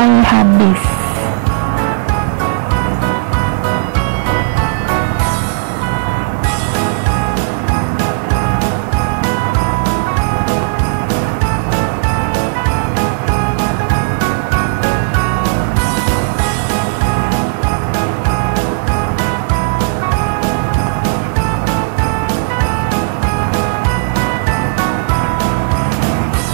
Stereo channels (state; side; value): silent; left; digital silence